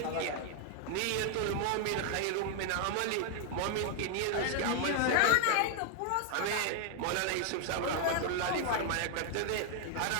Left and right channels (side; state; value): both; different; correlation 0.00